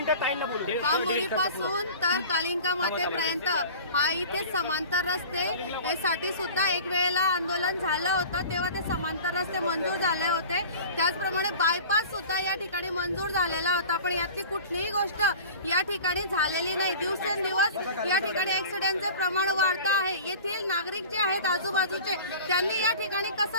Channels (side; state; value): both; inverted; correlation -0.40